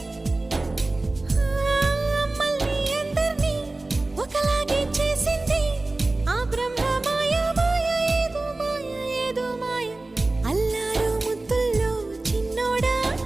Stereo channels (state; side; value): quieter; left; 3.0 dB